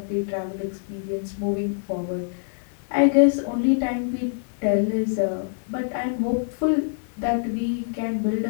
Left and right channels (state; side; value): silent; right; 59 dB below the other